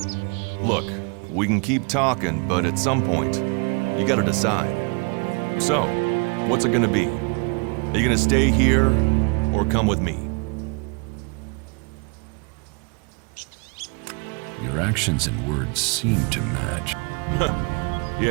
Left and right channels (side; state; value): left; quieter; 33.4 dB